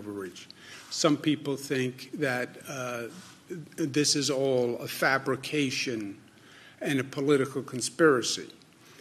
Some people think that this is all a fabrication and a political conspiracy.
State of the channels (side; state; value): both; identical; correlation 1.00